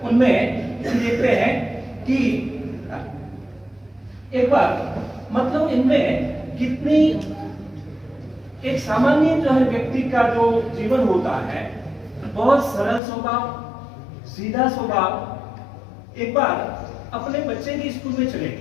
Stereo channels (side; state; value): right; drops out; at 13.0 s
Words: उनमें देखते हैं कि एक बार मतलब इनमें कितनी एक सामान्य जो है व्यक्ति का जो जीवन होता है, बहुत सरल स्वभाव, सीधा स्वभाव। एक बार अपने बच्चे की स्कूल में चले